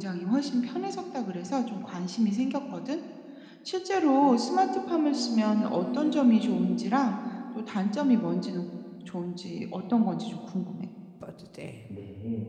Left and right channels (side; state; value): both; identical; correlation 1.00